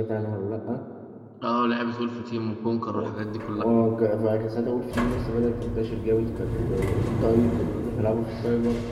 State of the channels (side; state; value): both; identical; correlation 1.00